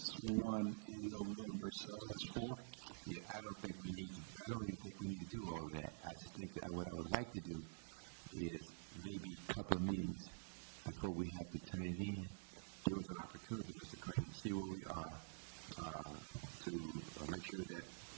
1 in November. So that's 4. Yeah, I don't even think we need to do all of that. I just think that what I would like to do is maybe a couple of meetings before we have to turn it in. Give us an opportunity, Mr. Crane, to see where we are, to make sure that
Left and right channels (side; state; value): left; silent; digital silence